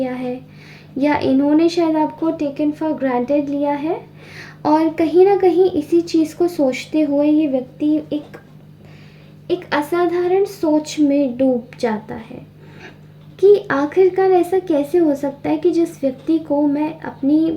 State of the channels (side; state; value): both; identical; correlation 1.00